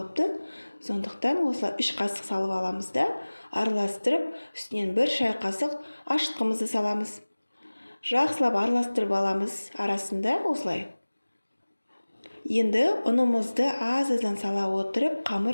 Сондықтан осылай 3 қасық салып аламыз да, араластырып, үстінен 1 шай қасық ашытқымызды саламыз. Жақсылап араластырып аламыз арасында осылай. Енді ұнымызды аз-аздан сала отырып,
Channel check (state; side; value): inverted; both; correlation -1.00